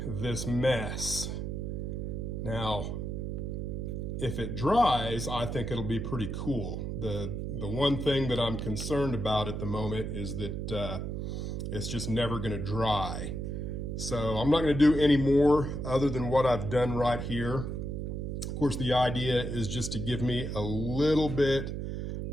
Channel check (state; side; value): noise; right; hum, 4 dB below the sound